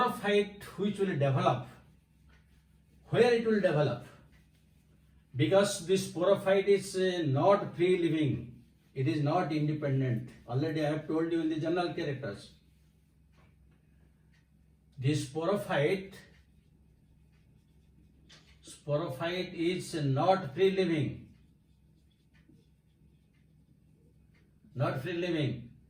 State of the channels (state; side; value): identical; both; correlation 1.00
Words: which will develop, where it will develop? Because this sporophyte is not free living, it is not independent. Already I have told you in the general characters. This sporophyte is not free living, not